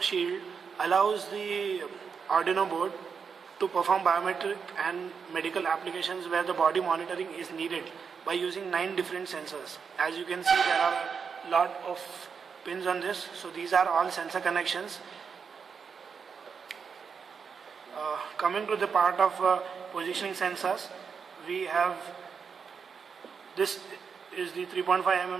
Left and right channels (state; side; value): quieter; left; 6.1 dB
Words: allows the Arduino board to perform biometric and medical applications where the body monitoring is needed by using 9 different sensors. As you can see, there are a lot of pins on this. So these are all sensor connections. Coming to the part of positioning sensors, we have this is the 3.5